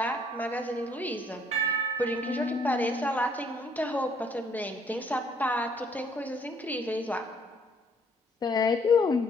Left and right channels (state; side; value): normal; both; correlation 0.64